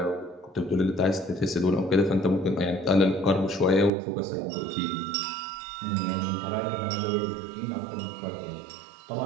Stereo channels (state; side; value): drops out; left; at 3.9 s